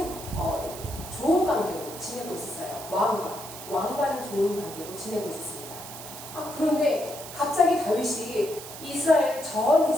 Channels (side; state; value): right; noise; hiss, 12 dB below the sound